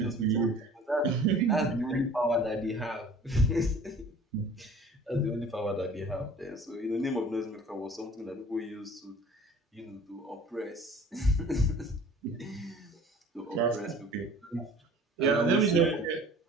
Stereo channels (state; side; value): normal; both; correlation 0.47